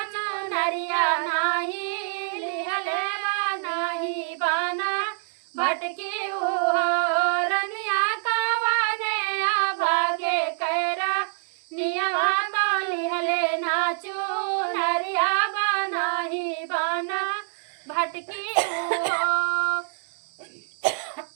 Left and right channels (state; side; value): silent; left; 61 dB below the other